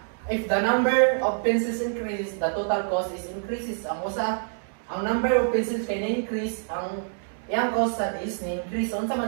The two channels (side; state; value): left; silent; 61 dB below the other